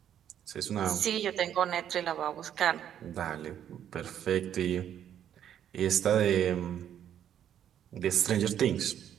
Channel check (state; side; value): quieter; left; 10.0 dB